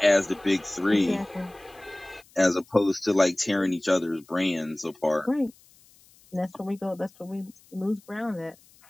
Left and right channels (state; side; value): noise; left; hiss, 28 dB below the sound